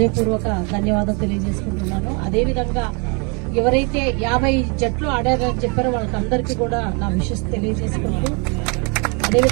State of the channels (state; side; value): quieter; left; 33.8 dB